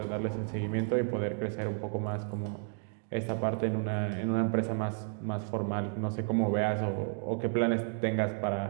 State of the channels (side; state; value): left; silent; 56 dB below the other